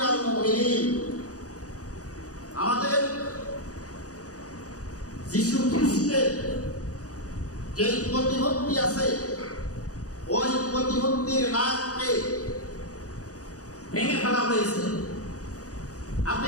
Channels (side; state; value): right; late; 0.67 ms